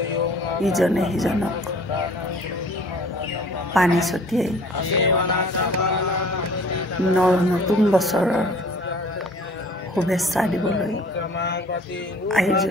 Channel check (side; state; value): both; normal; correlation 0.50